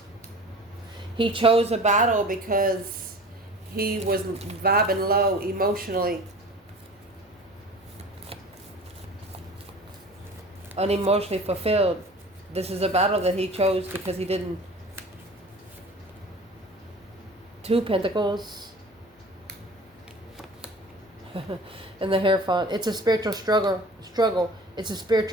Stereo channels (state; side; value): normal; both; correlation 0.41